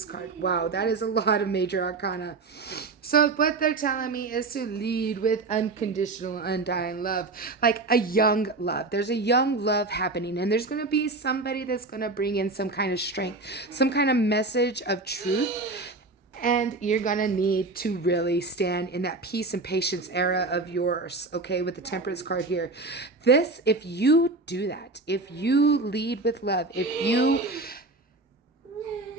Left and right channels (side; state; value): left; quieter; 3.4 dB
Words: card. Wow, that is a lot of major arcana. So what they're telling me is to lead with unconditional, undying love. Like a young love. There's a young love happening. And there's going to be somebody that's going to bring in some kind of strength. Some kind of message of truth. And you're going to need to really stand in that peace and patience era of yours. Okay, with the Temperance card here. This, if you do that. If you lead with love.